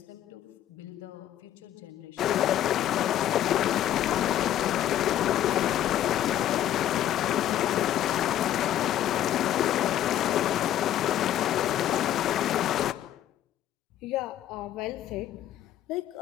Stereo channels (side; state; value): right; quieter; 11.8 dB